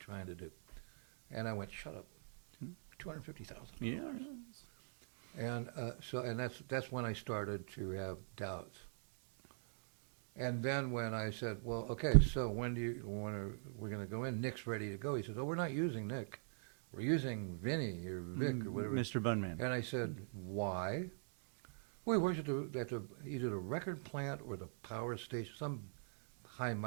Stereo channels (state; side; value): silent; left; digital silence